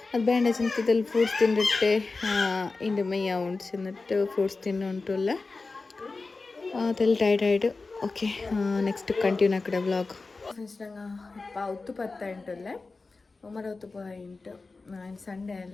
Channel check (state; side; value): quieter; right; 3.8 dB